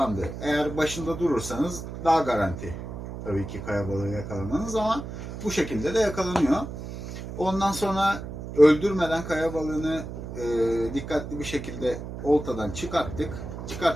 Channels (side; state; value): right; noise; hum, 9 dB below the sound